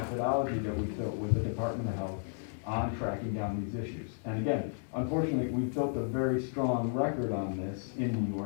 that we built with the Department of Health on tracking down these issues. And again, unfortunately, we've built a very strong record on this in New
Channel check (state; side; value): silent; right; digital silence